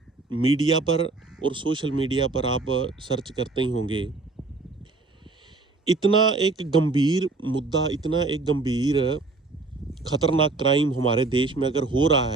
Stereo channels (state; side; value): quieter; left; 3.6 dB